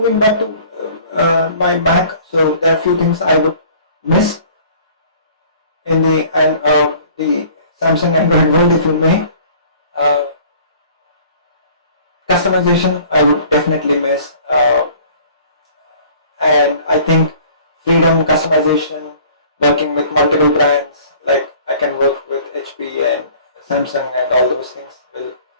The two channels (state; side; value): inverted; both; correlation -0.51